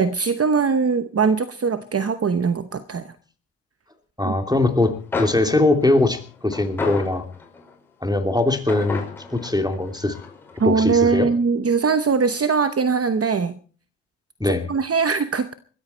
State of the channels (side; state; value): both; normal; correlation 0.42